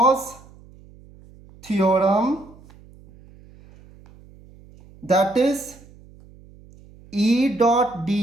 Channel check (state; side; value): noise; right; hum, 24 dB below the sound